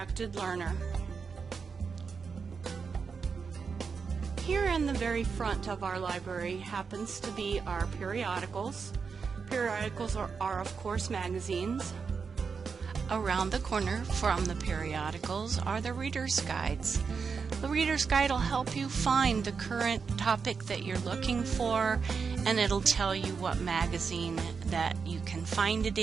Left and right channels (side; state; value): left; quieter; 5.5 dB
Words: learner. Here in the very front of our library happens to be our periodicals. Periodicals are of course magazines. Around the corner from the periodicals are the Reader's Guides. The Reader's Guide will help you find the current topic that you're looking for, and it'll tell you what magazine that you can find it